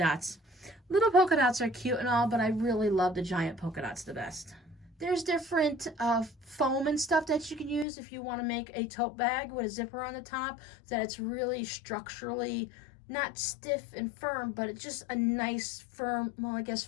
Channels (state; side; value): drops out; right; at 7.9 s